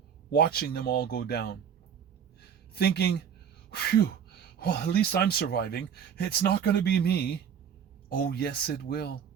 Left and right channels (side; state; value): left; quieter; 7.9 dB